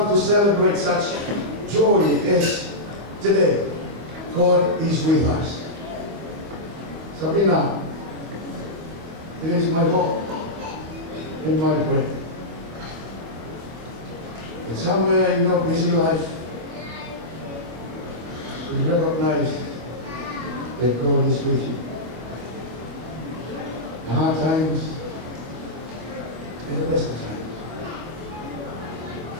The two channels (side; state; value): left; late; 25 ms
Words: to celebrate such joy as today, God is with us. Sabrina, it is my hope and my prayer that somewhere in your busy life you recognize that God is with you. The hard times and the best of times.